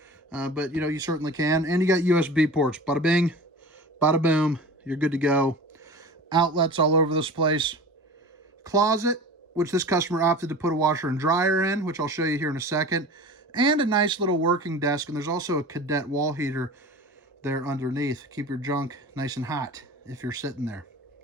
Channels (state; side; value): normal; both; correlation 0.36